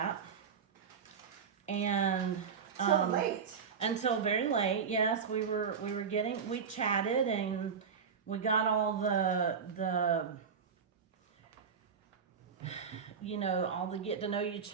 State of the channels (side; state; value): left; quieter; 6.4 dB